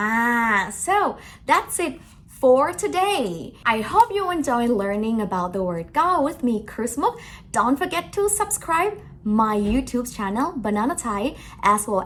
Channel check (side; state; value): both; identical; correlation 1.00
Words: so that's it for today. I hope you enjoy learning about the word go with me, Christmas. Don't forget to subscribe my YouTube channel, BananaThai, as well